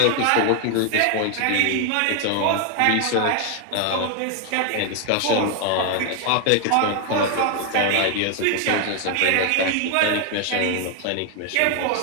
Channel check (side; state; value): both; different; correlation 0.01